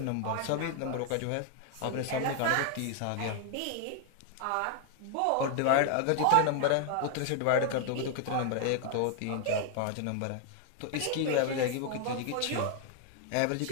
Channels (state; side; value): different; both; correlation 0.00